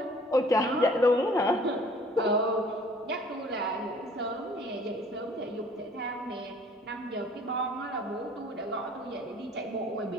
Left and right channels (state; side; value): normal; both; correlation 0.54